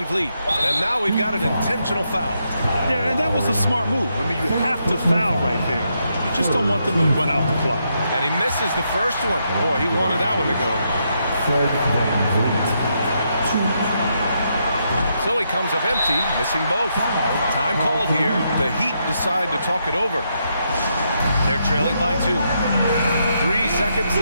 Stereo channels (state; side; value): inverted; both; correlation -0.79